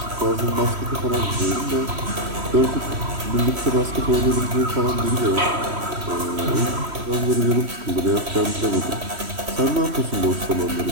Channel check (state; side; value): late; left; 3.1 ms